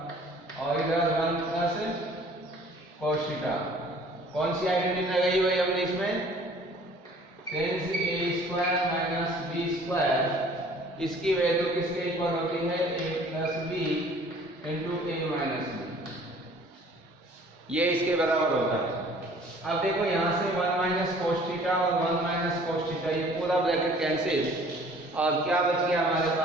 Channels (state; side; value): normal; both; correlation 0.52